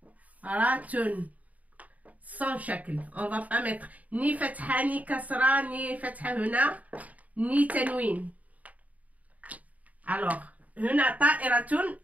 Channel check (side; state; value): left; late; 0.072 ms